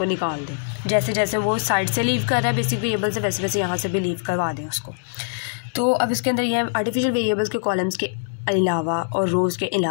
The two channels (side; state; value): right; silent; digital silence